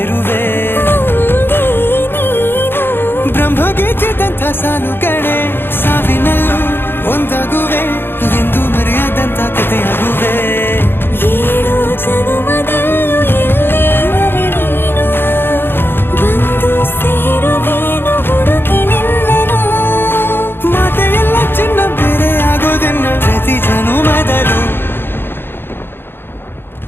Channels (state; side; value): late; right; 0.10 ms